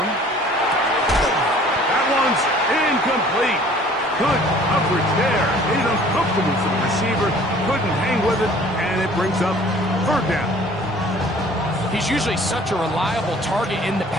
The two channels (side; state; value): both; normal; correlation 0.52